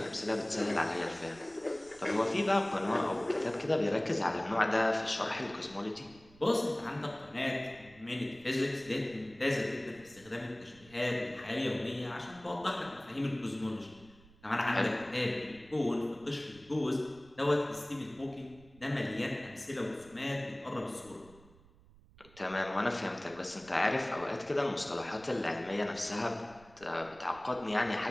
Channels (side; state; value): right; noise; rumble, 25 dB below the sound